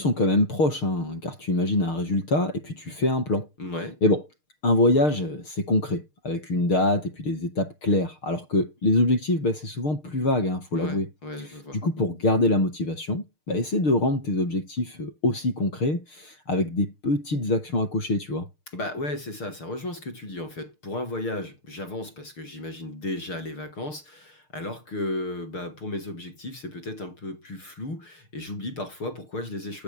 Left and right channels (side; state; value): right; late; 6.6 ms